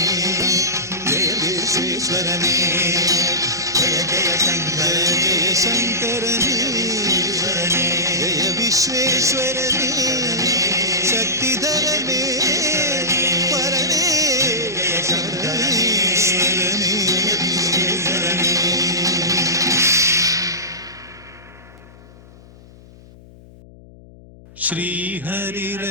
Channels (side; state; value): left; noise; hum, 22 dB below the sound